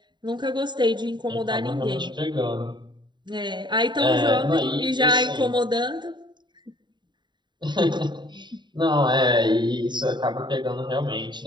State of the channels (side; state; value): left; late; 0.22 ms